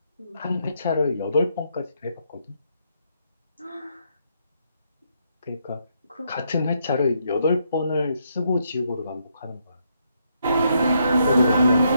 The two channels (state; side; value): inverted; both; correlation -0.76